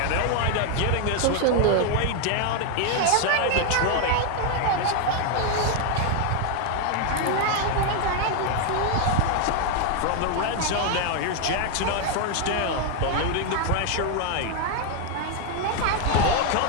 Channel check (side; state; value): both; different; correlation 0.01